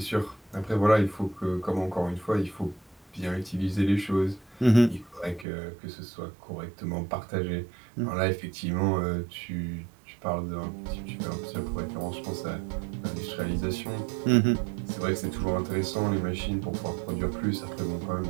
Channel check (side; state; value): left; drops out; at 5.5 s